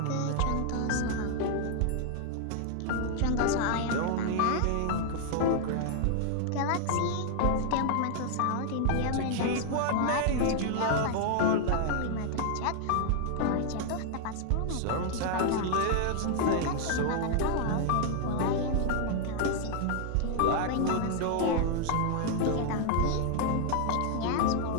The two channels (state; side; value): different; both; correlation 0.00